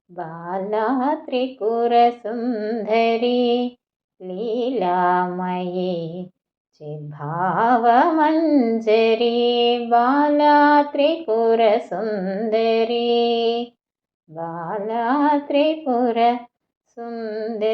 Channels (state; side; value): identical; both; correlation 1.00